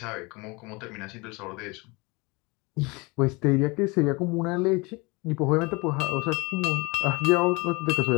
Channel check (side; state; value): right; quieter; 26.3 dB